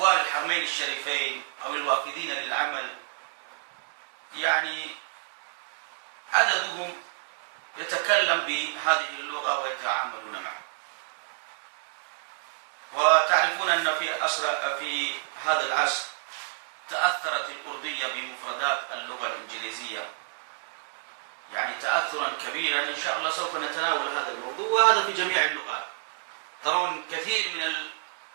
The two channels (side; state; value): left; silent; digital silence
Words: الحرمين الشريفين أو الوافدين للعمل، يعني عددهم يتكلم بهذه اللغة ويتعاملون معها. وتعرفون أن في هذا العصر تأثرت الأردية بمفردات اللغة الإنجليزية، يعني تأثرا كبيرا. إن شاء الله سوف نتناول هذا الموضوع، وهذا في جميع اللغات. ترون كثير من